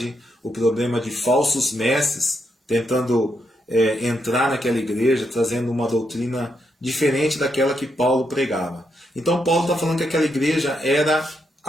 o problema de falsos mestres tentando entrar naquela igreja, trazendo uma doutrina diferente daquela que Paulo pregava. Então Paulo está falando que aquela igreja era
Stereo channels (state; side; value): normal; both; correlation 0.80